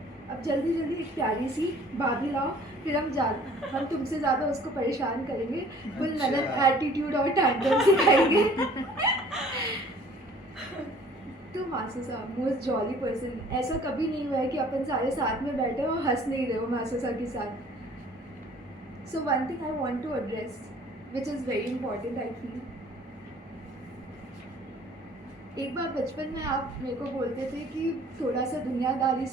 अब जल्दी जल्दी एक प्यारी सी भाभी लाओ, फिर हम तुमसे ज़्यादा उसको परेशान करेंगे. फुल ननद एटीट्यूड और टैंडम सिखाएंगे. तो मासू साहब मोस्ट जॉली पर्सन. ऐसा कभी नहीं हुआ है कि अपन सारे साथ में बैठे और हंस नहीं रहे हो मासू साहब के साथ. So one thing I want to address which is very important I feel. एक बार बचपन में आप मेरे को बोलते थे कि थोड़ा सा दुनियादारी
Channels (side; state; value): both; normal; correlation 0.53